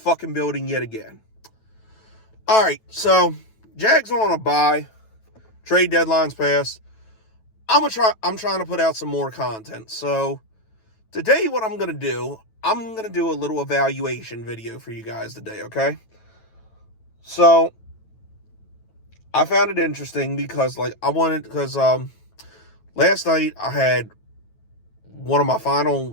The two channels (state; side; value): late; right; 9.1 ms